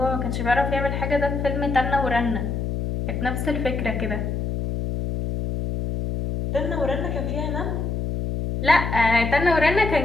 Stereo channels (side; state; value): left; noise; hum, 2 dB below the sound